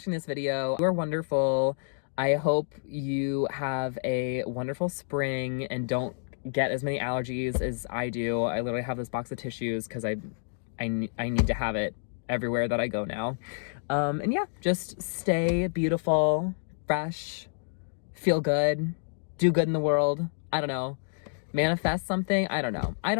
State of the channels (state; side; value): silent; right; digital silence